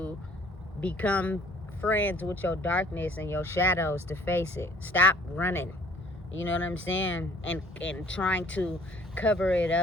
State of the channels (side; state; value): both; normal; correlation 0.57